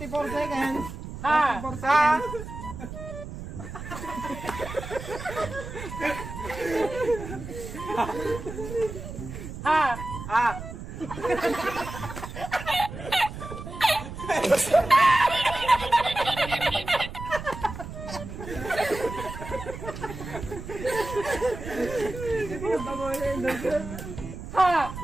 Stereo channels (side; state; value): right; noise; rumble, 10 dB below the sound